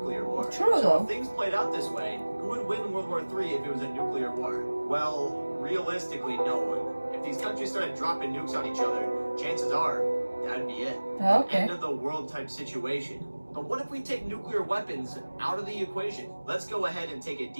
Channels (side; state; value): both; inverted; correlation -1.00